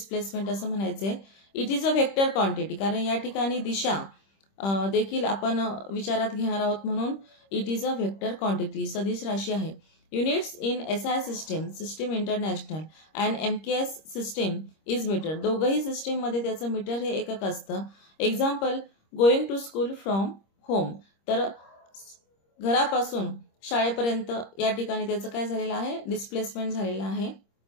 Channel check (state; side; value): late; right; 26 ms